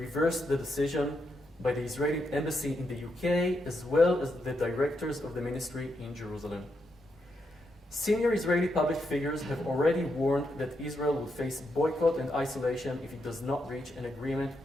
the decision by the Israeli embassy in the UK, as well as the directors of the ministry in Jerusalem. Senior Israeli public figures have already warned that Israel will face boycott and isolation if it does not reach an agreement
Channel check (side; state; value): both; normal; correlation 0.81